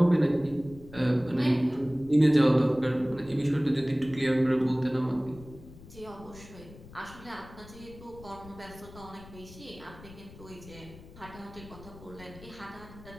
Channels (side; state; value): left; noise; rumble, 18 dB below the sound